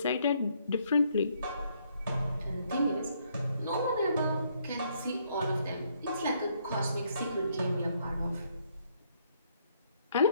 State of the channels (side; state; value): both; inverted; correlation -0.70